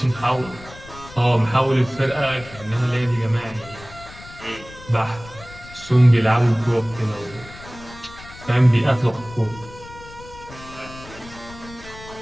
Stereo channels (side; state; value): left; noise; rumble, 18 dB below the sound